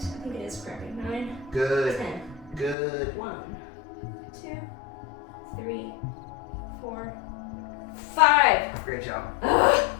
it is cramping. 9, Good. 10. Good. 1, 2, 3, 4, 5. Great job. Ugh.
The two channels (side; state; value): right; drops out; at 2.8 s